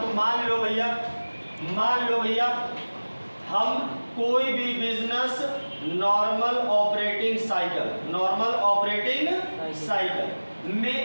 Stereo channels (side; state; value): both; inverted; correlation -1.00